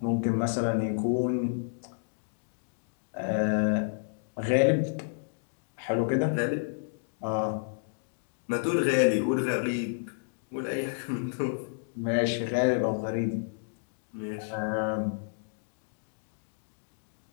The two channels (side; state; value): right; silent; digital silence